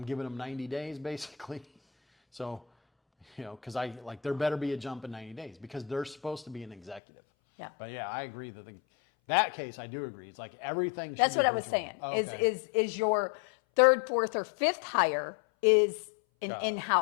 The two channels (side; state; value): right; drops out; at 7.0 s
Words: giving them 90 days basically. So, because there better be a jump in 90 days because they're supposed to be an executive. Yeah. But yeah, I agree that case, I do agree. It's like everything. That's what I was saying. Oh, okay. Is your third, fourth, or fifth hire is an